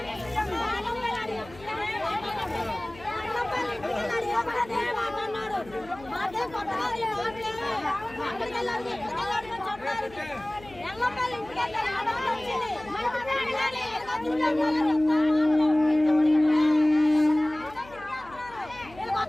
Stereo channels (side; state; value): left; noise; hum, 21 dB below the sound